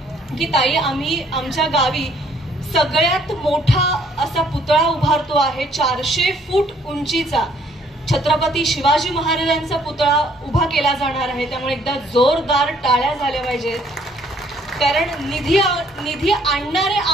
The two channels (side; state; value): both; normal; correlation 0.63